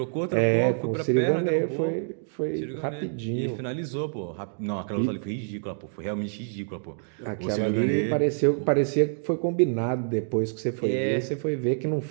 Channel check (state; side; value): silent; left; digital silence